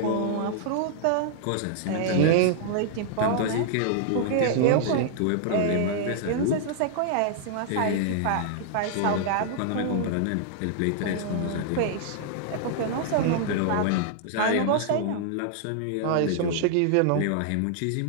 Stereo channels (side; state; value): both; different; correlation -0.01